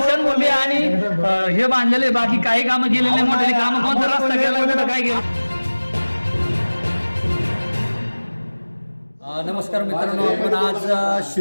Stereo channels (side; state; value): both; inverted; correlation -1.00